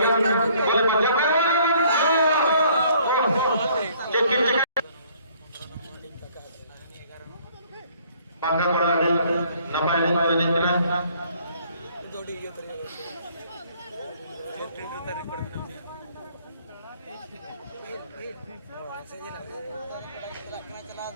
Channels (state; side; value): inverted; both; correlation -0.60